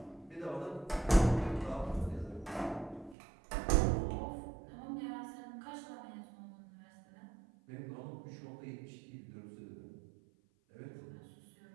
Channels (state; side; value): drops out; left; at 3.2 s